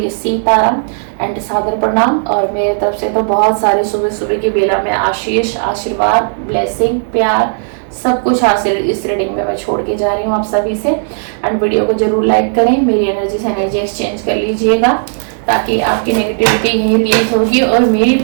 सीताराम एंड सादर प्रणाम, और मेरे तरफ से तो बहुत सारे सुबह सुबह की बेला में आशीष, आशीर्वाद, ब्लेसिंग, प्यार, सब कुछ हासिल इस रीडिंग में मैं छोड़ के जा रही हूँ आप सभी से। एंड वीडियो को जरूर लाइक करें, मेरी एनर्जी से एनर्जी एक्सचेंज कर लीजिएगा ताकि आपकी नेगेटिविटी यही रिलीज होगी और मेरी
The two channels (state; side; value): silent; left; digital silence